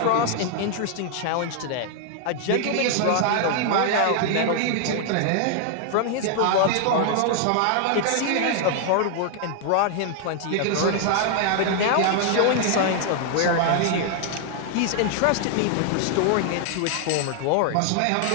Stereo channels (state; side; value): different; both; correlation 0.00